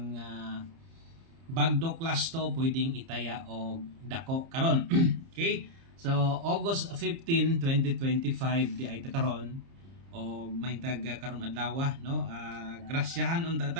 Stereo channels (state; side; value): late; left; 30 ms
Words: bagdo klasto pwedeng itaya og dako karon. Okay? So August 15, 2025 di ay ta karon og may tag karong adlaw, no, grasyahan unta